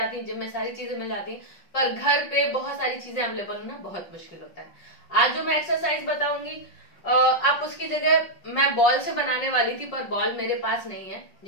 हैं, जिम में सारी चीजें मिल जाती हैं, पर घर पे बहुत सारी चीजें अवेलेबल होना बहुत मुश्किल होता है। आज जो मैं एक्सरसाइज बताऊंगी आप उसकी जगह मैं बॉल से बनाने वाली थी, पर बॉल मेरे पास नहीं है,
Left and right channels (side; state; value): right; late; 5.4 ms